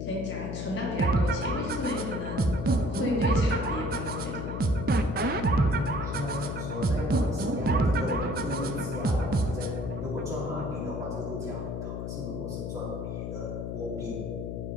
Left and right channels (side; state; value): left; noise; hum, 4 dB below the sound